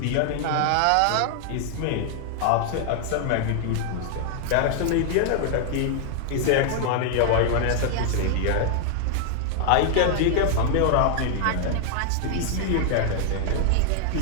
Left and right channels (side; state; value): both; different; correlation 0.00